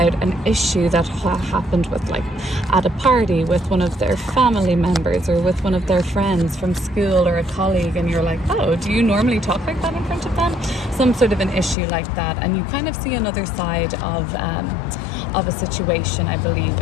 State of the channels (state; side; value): drops out; right; at 11.8 s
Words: an issue that happened with, like, at a party with one of their family members or with one of their friends from school or a colleague, and you're like, oh, do you normally talk like that in front of them? Some sort of an issue like that, and you kind of see another side of a situation, I believe,